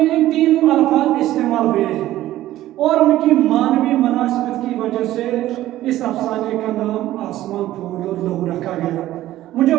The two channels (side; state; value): left; quieter; 14.6 dB